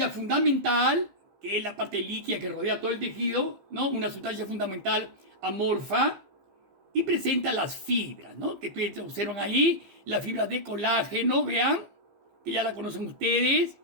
fundamental, que es la parte líquida que rodea todo el tejido, ¿no? Una sustancia fundamental amorfa. Y presenta las fibras, ¿no? Que ustedes observan ahí, las fibras de colágeno, vean, que ya la conocen ustedes.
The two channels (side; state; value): left; late; 15 ms